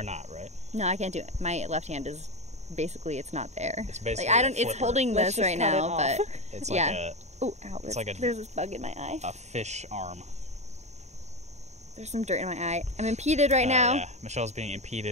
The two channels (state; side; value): late; left; 0.33 ms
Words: not, right? No, I can't do it. My left hand is basically it's not there. It's basically like I don't. a It's flipper. holding Let's this just right cut it now, off. but It's yeah. like Oh, ow! it's like a- there's this bug in my eye. a fish arm. There's some dirt in my eye. I'm impeded right now. Yeah. Michelle's being